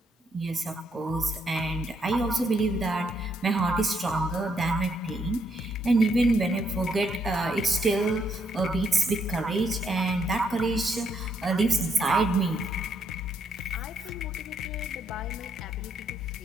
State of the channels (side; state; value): both; normal; correlation 0.74